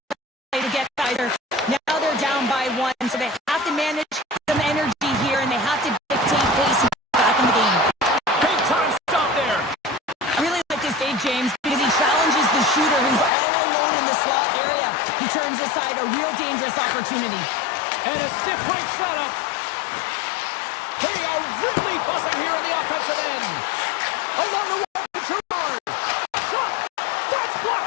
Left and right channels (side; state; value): right; drops out; at 13.3 s